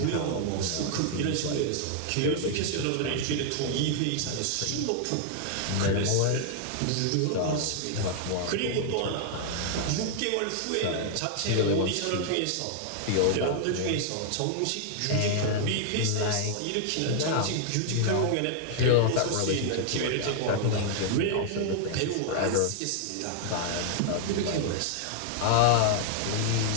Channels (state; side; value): different; both; correlation 0.00